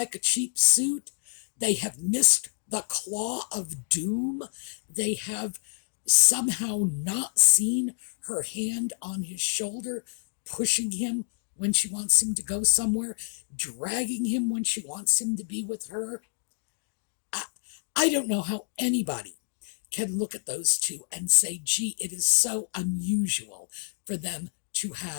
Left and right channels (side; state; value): right; silent; digital silence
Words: a cheap suit. They have missed the claw of doom. They have somehow not seen her hand on his shoulder, pushing him when she wants him to go somewhere, dragging him when she wants him to be with her. I don't know how anybody can look at those two and say, gee, it is so unusual for them to